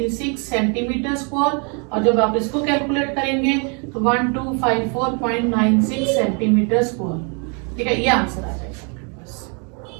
सेंटीमीटर स्क्वायर, और जब आप इसको कैलकुलेट करेंगे तो 1254.96 सेंटीमीटर स्क्वायर। ठीक है, ये आंसर आ जाएगा आपके पास।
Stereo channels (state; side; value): quieter; left; 36.7 dB